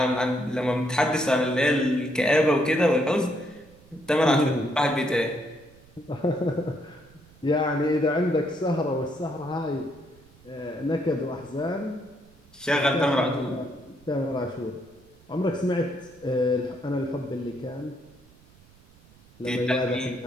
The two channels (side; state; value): right; noise; rumble, 27 dB below the sound